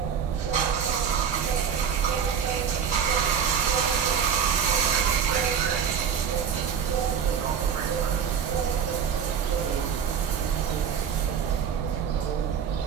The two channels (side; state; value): left; quieter; 7.4 dB